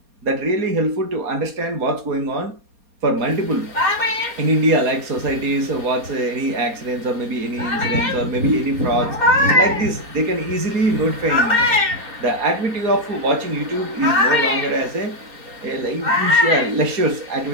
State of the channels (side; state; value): left; late; 4.2 ms